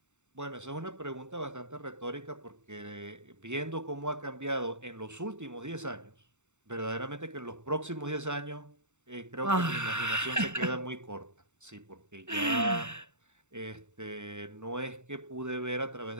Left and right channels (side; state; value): left; late; 0.84 ms